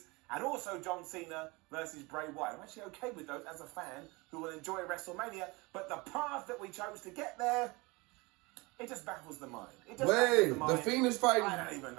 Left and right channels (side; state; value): left; quieter; 25.1 dB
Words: and also John Cena versus Bray Wyatt. I'm actually okay with those as a fan who will enjoy WrestleMania, but the path that we chose to get there, it just baffles the mind. Wait, the Fiend is fighting. I don't even